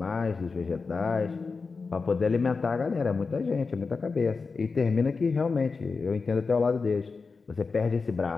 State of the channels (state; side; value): quieter; right; 4.5 dB